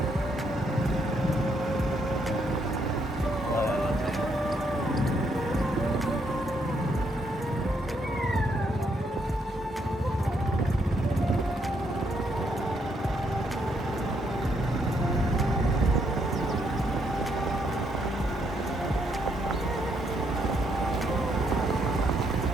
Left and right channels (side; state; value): both; normal; correlation 0.74